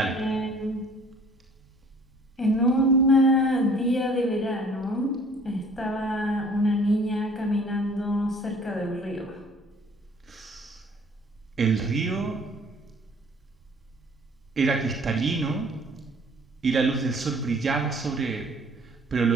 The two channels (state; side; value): normal; both; correlation 0.54